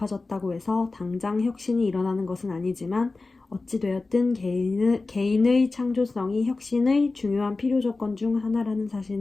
해서 당장 혁신이 일어나는 것은 아니지만 어찌되었든 개인의 창조성이 혁신의 중요한 필요 조건 중 하나라는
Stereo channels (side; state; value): right; quieter; 3.6 dB